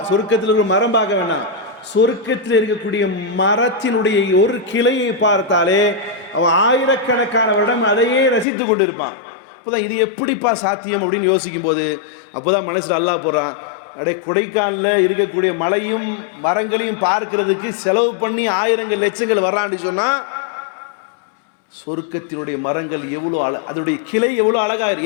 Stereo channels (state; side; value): drops out; right; at 8.5 s